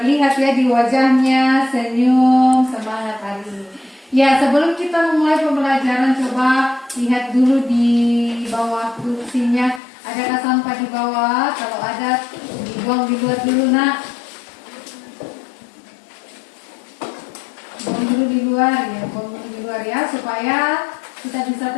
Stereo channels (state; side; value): drops out; right; at 9.8 s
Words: ya di wajahnya senyum, semangat hari ini. Ya, sebelum kita memulai pembelajaran, coba lihat dulu di bawah kursinya. Adakah sampah di bawah? Kalau ada, dibuang di luar dulu, nak. Buang dulu di luar ya, buang dulu di luar ya, supaya kita bisa